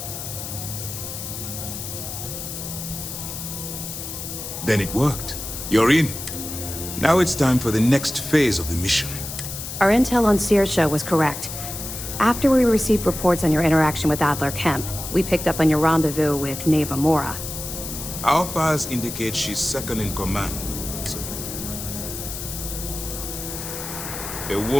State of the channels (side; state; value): left; noise; hiss, 8 dB below the sound